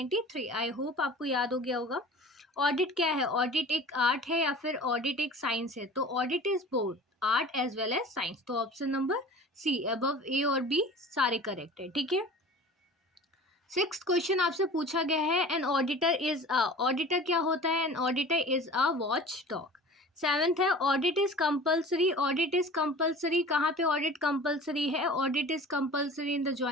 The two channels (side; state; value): both; normal; correlation 0.41